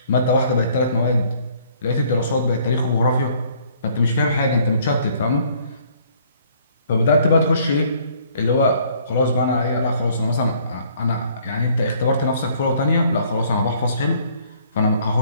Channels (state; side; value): inverted; both; correlation -0.61